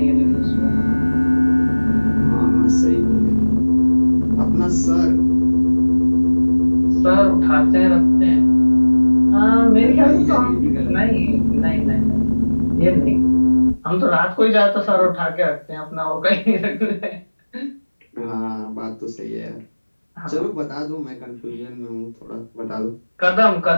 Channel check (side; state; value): both; inverted; correlation -1.00